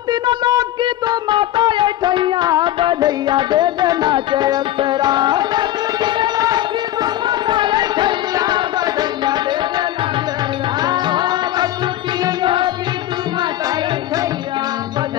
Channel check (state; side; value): quieter; right; 13.6 dB